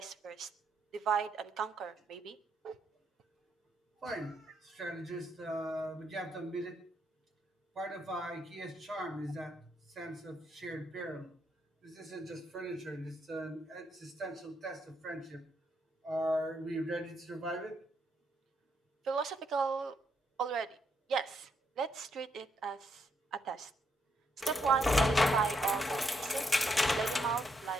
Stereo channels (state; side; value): normal; both; correlation 0.77